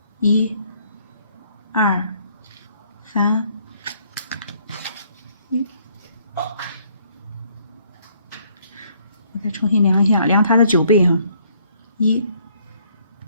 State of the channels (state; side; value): inverted; both; correlation -0.65